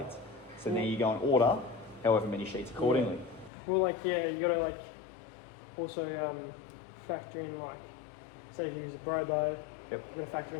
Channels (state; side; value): drops out; right; at 3.5 s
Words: So now you go and order however many sheets accordingly. Yeah. Well, like, yeah, you gotta like also factor in, like, say if you use a brobo, Yep. you gotta factor